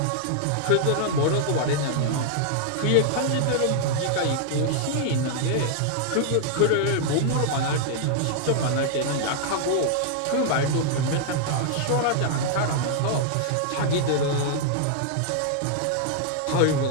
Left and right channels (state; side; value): different; both; correlation -0.01